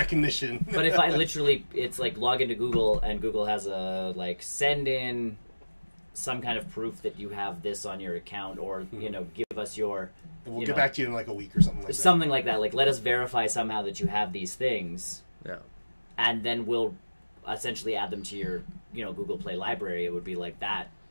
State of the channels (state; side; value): inverted; both; correlation -1.00